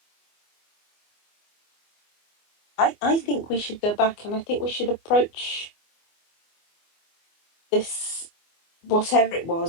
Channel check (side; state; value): right; late; 24 ms